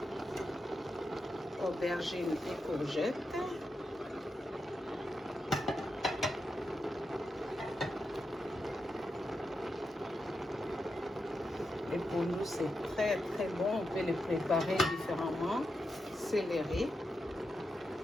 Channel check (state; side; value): normal; both; correlation 0.87